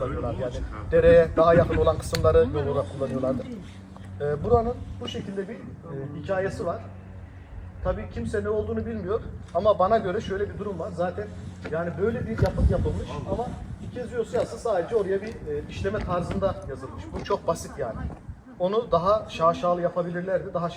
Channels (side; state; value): both; identical; correlation 1.00